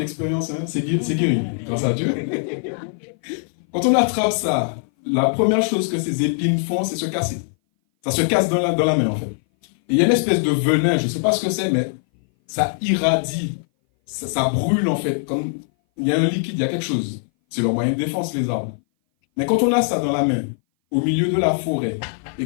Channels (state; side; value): silent; right; 59 dB below the other